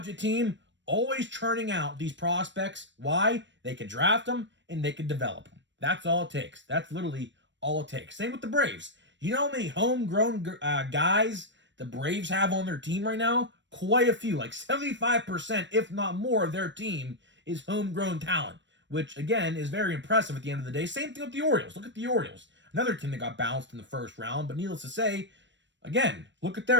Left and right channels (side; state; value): left; late; 0.53 ms